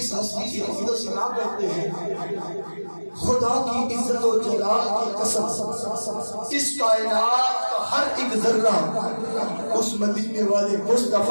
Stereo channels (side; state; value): both; inverted; correlation -1.00